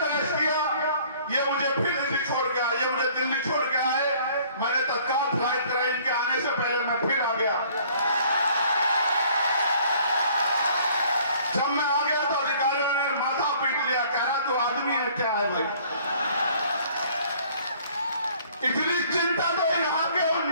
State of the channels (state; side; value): inverted; both; correlation -0.56